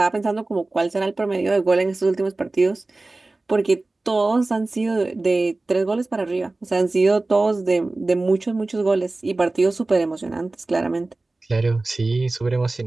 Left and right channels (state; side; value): quieter; left; 3.1 dB